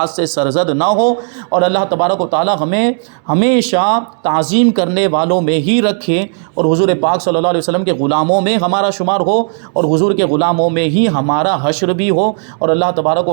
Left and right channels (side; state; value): left; silent; 56 dB below the other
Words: سے سرزد نہ ہو، اور اللہ تبارک و تعالی ہمیں ہمیشہ تعظیم کرنے والوں میں ہی رکھے، اور حضور پاک صلی اللہ علیہ وسلم کے غلاموں میں ہمارا شمار ہو، اور حضور کے غلاموں میں ہی ہمارا حشر بھی ہو، اور اللہ تبارک